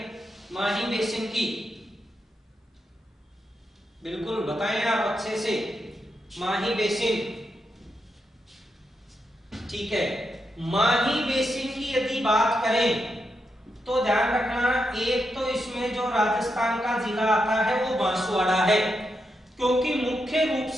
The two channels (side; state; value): both; normal; correlation 0.84